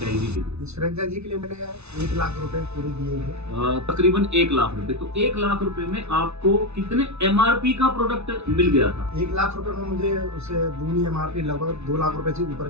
के लिए? इस फ्रेंचाइजी के लिए मैंने 1 लाख रुपए पूरे दिए थे। तकरीबन 1 लाख रुपए। तो 1 लाख रुपए में आपको कितने एमआरपी का प्रोडक्ट मिल गया था? 1 लाख रुपए में मुझे उससे दूनी एमआरपी, लगभग 2 लाख रुपए से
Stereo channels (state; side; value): late; left; 0.81 ms